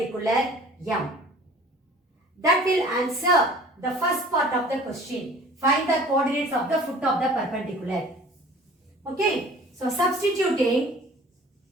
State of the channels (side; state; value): both; normal; correlation 0.47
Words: M. That will answer the first part of the question. Find the coordinates of the foot of the perpendicular. Okay, so substituting